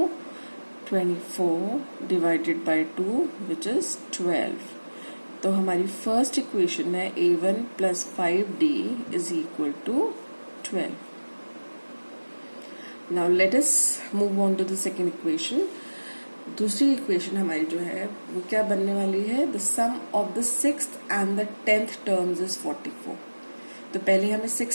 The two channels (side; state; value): both; inverted; correlation -1.00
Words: 24 divided by 2 which is 12. तो हमारी first equation है a1 plus 5d is equal to 12. Now let us move on to the second equation. दूसरी equation हमारी जो है वो क्या बनने वाली है? The sum of the sixth and the 10th terms is 44. तो पहले हमें